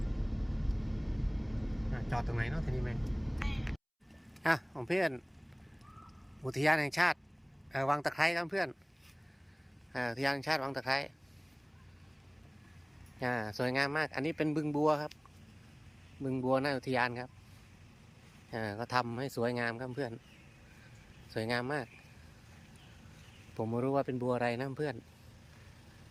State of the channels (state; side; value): identical; both; correlation 1.00